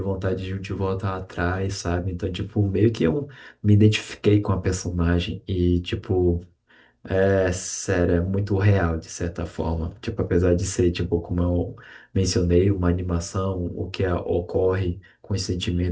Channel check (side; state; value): both; identical; correlation 1.00